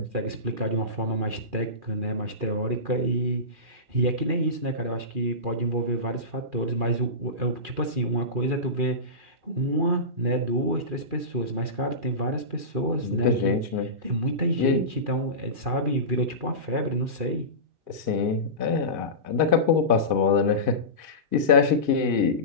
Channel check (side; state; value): left; late; 2.4 ms